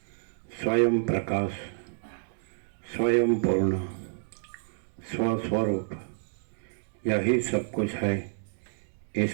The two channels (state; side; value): silent; left; digital silence